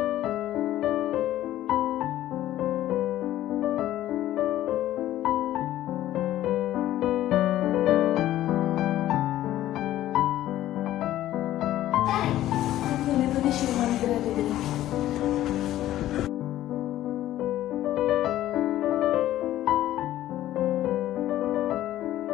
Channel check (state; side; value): quieter; right; 13.7 dB